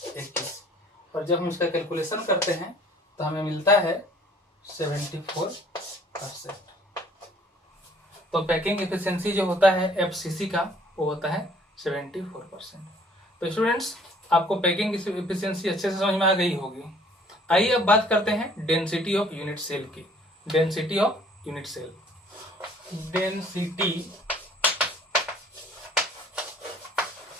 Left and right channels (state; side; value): normal; both; correlation 0.57